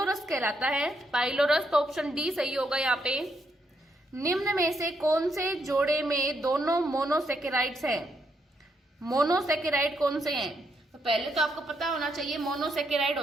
कहलाता है। पाइलोरस, तो ऑप्शन डी सही होगा यहाँ पे। निम्न में से कौन से जोड़े में दोनों मोनोसेकेराइड्स हैं? मोनोसेकेराइड कौन से हैं? तो पहले तो आपको पता होना चाहिए मोनोसेकेराइड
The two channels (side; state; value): both; normal; correlation 0.77